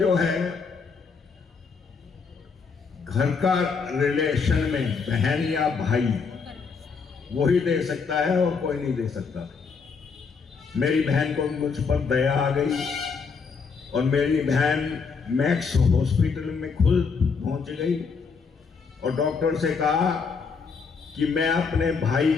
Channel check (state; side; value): quieter; right; 5.3 dB